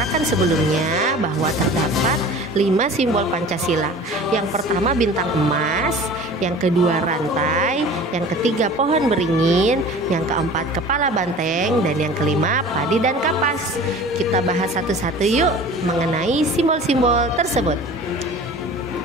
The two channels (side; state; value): both; normal; correlation 0.41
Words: sebelumnya bahwa terdapat 5 simbol Pancasila. Yang pertama bintang emas, yang kedua rantai, yang ketiga pohon beringin, yang keempat kepala banteng, dan yang kelima padi dan kapas. Kita bahas satu-satu yuk mengenai simbol-simbol tersebut.